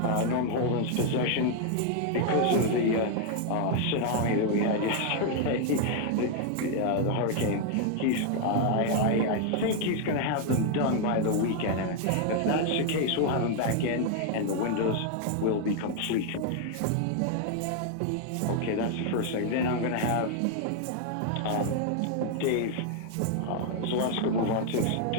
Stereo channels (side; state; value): both; different; correlation 0.00